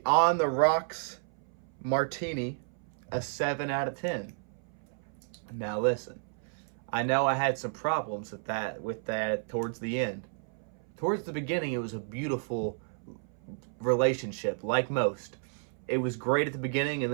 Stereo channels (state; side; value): silent; left; 57 dB below the other